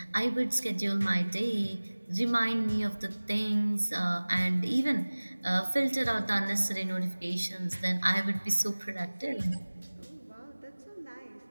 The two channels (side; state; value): both; inverted; correlation -1.00